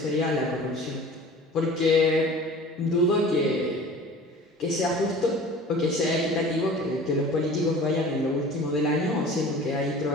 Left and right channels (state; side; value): normal; both; correlation 0.42